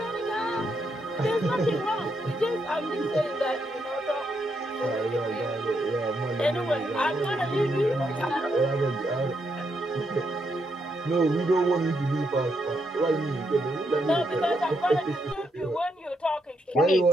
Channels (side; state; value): both; normal; correlation 0.79